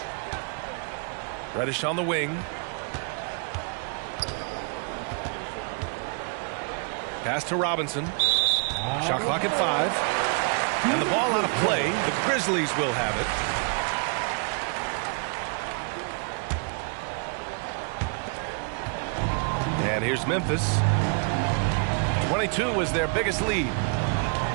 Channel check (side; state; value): left; quieter; 39.7 dB